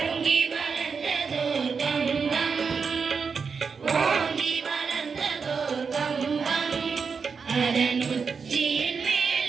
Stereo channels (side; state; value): left; quieter; 5.5 dB